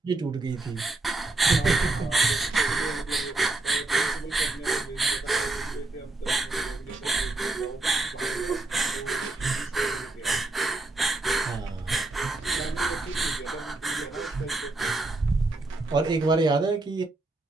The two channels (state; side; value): quieter; left; 3.0 dB